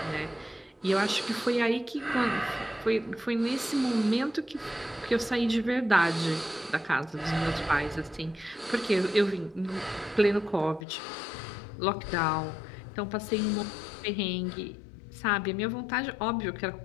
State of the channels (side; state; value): right; drops out; at 10.9 s